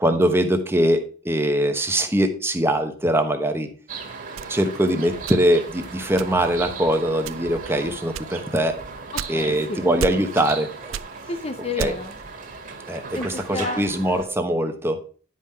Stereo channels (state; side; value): normal; both; correlation 0.64